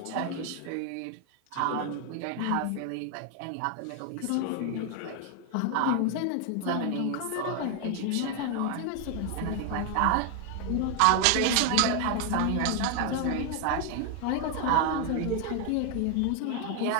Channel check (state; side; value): different; both; correlation 0.01